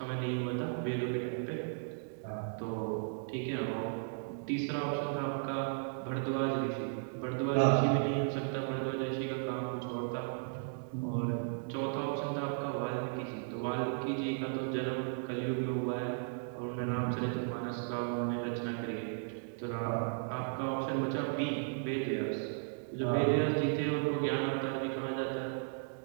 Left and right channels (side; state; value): left; silent; digital silence